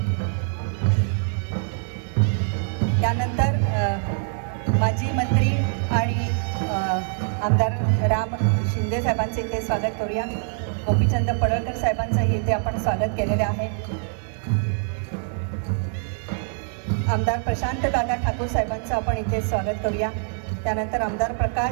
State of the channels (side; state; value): left; silent; 62 dB below the other